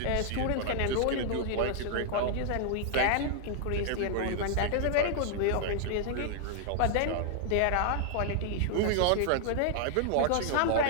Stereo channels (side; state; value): both; different; correlation 0.00